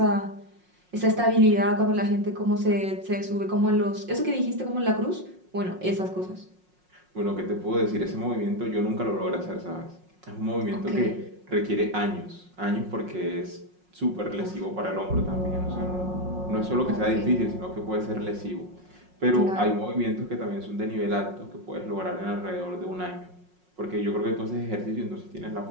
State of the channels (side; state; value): left; late; 5.5 ms